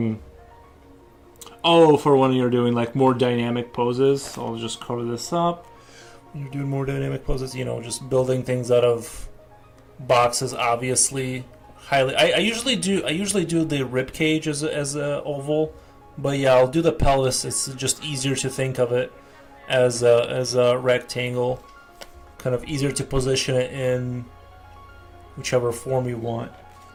Oh, for when you're doing like more dynamic poses, so I'll just cover this up. When you're doing more dynamic poses, just building things out of boxes. Obviously, I usually do the rib cage as a oval, but yeah, I'll do the pelvis. It's just easier to think of it as a rectangle, kind of easier to position it in whichever form you want.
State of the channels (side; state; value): both; identical; correlation 1.00